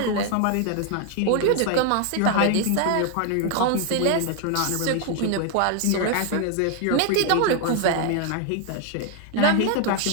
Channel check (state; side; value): different; both; correlation 0.00